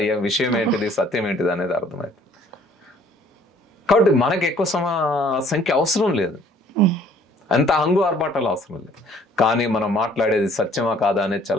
విషయం ఏంటిది, సత్యం ఏంటిది అనేది అర్థమవుతుంది. కాబట్టి మనకు ఎక్కువ సంఖ్య అవసరం లేదు, అంత హంగు ఆర్భాటాలు అవసరం లేదు. కానీ మనం మాట్లాడేది సత్యమా కాదా అనేది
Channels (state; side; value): normal; both; correlation 0.57